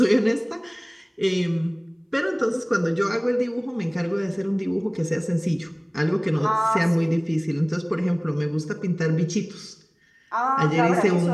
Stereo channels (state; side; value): identical; both; correlation 1.00